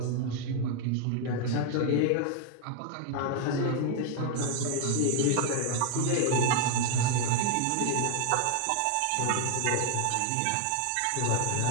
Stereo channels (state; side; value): different; both; correlation 0.00